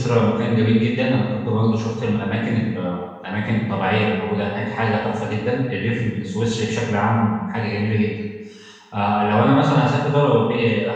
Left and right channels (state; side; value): identical; both; correlation 1.00